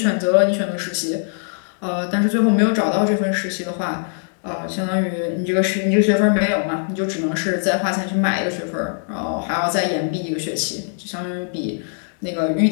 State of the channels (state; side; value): silent; right; 65 dB below the other